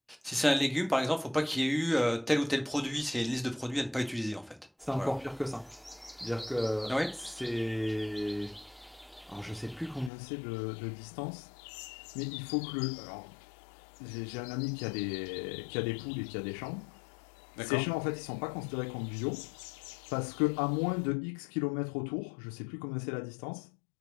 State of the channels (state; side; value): drops out; right; at 10.1 s